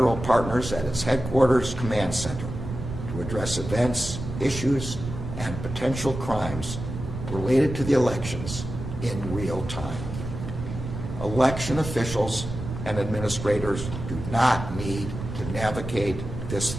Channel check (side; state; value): right; noise; rumble, 7 dB below the sound